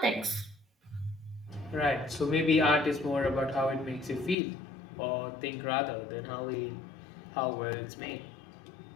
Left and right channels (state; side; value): drops out; right; at 4.4 s